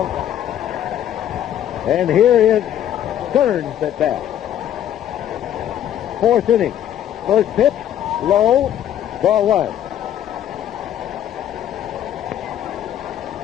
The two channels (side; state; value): right; quieter; 10.8 dB